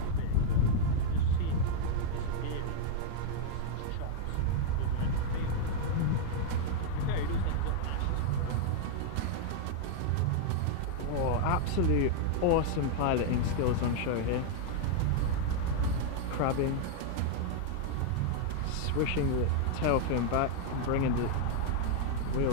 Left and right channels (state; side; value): different; both; correlation -0.01